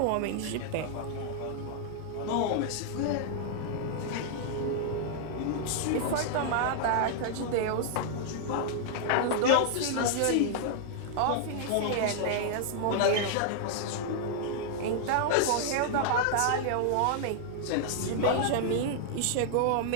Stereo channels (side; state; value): both; different; correlation -0.01